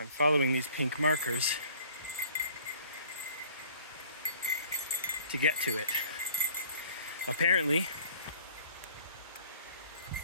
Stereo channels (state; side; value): inverted; both; correlation -0.53